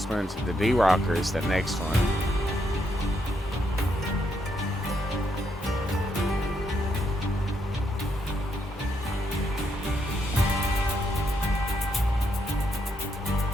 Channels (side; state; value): both; normal; correlation 0.78